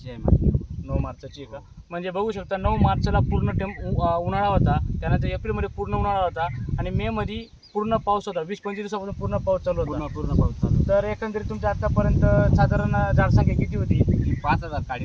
आहे माझी. 9 मार्चची का? म्हणजे बघू शकता 9 मार्चला पूर्ण उन्हाळा होता, त्यानंतर एप्रिलमध्ये पूर्ण उन्हाळा होता आणि मेमध्ये पूर्ण पाऊस होता. 20-25 दिवसापासून पूर्ण पाऊस चालू होता. पूर्ण पाऊस चालू. तर एकंदरीत तुमच्या आतापर्यंत साधारण झाडसंख्या किती होती? ही 5000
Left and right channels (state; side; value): identical; both; correlation 1.00